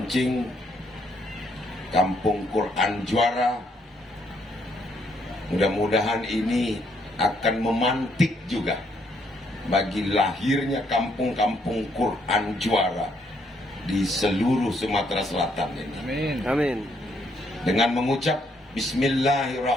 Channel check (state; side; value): normal; both; correlation 0.71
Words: Kampung Quran Juara. Mudah-mudahan ini akan memantik juga bagi lahirnya kampung-kampung Quran Juara di seluruh Sumatera Selatan ini. Amin. Amin. Dengan mengucap